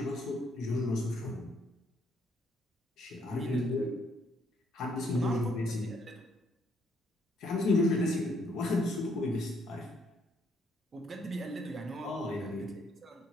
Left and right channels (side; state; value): both; normal; correlation 0.70